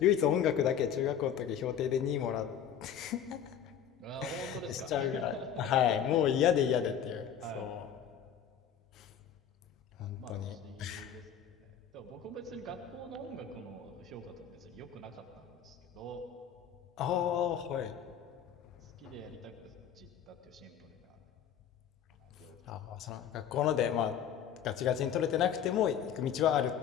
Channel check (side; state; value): right; quieter; 8.7 dB